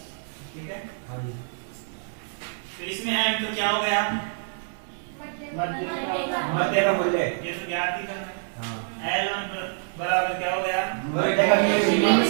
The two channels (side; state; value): left; silent; 61 dB below the other